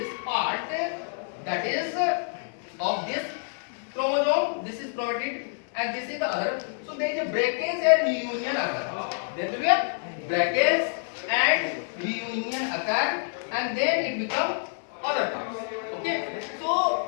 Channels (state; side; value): silent; right; digital silence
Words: that is of this chromosome, this is chromatid and this is the other. So there is a breakage and reunion occur. There will be a breakage and reunion occur, and then it becomes other parts. Okay.